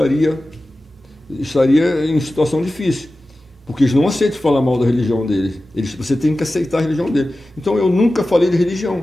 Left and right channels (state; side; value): normal; both; correlation 0.95